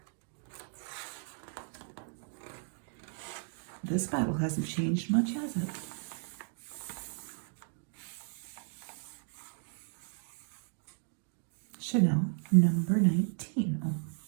This bottle hasn't changed much, has it? Chanel number 19. Oh,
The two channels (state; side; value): silent; left; 54 dB below the other